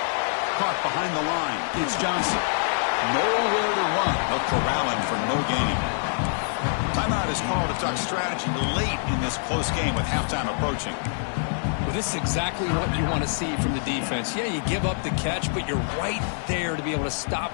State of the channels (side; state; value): right; silent; 56 dB below the other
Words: Caught behind the line. It's Johnson. Nowhere to run. They'll corral him for no gain. Timeout is called to talk strategy late in this close game with halftime approaching. Well, this is exactly what you want to see from the defense. Yeah, you give up the catch, but you're right there to be able to